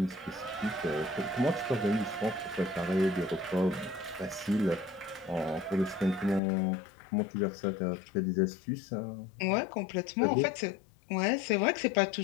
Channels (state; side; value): drops out; right; at 6.4 s